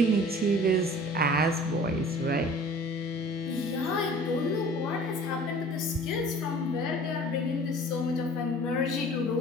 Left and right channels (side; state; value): both; normal; correlation 0.46